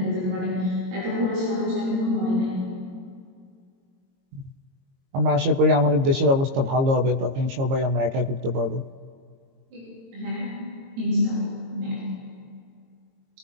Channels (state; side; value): late; left; 22 ms